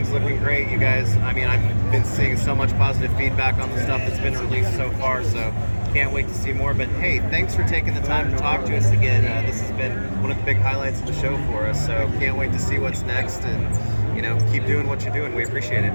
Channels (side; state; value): both; inverted; correlation -1.00